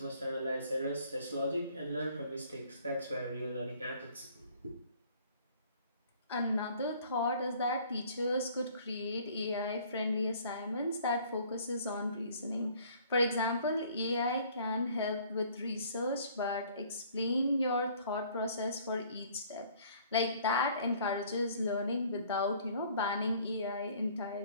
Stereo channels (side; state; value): both; inverted; correlation -0.56